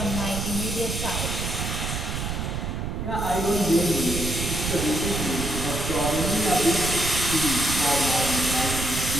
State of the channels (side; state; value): right; noise; rumble, 3 dB below the sound